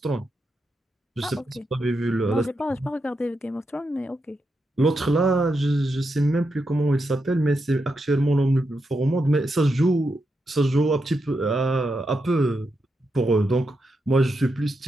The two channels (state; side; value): normal; both; correlation 0.85